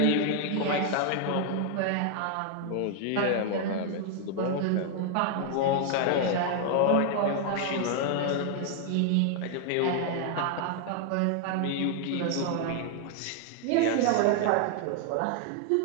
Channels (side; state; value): both; different; correlation 0.00